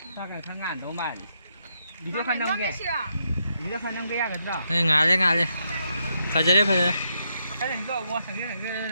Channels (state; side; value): inverted; both; correlation -0.79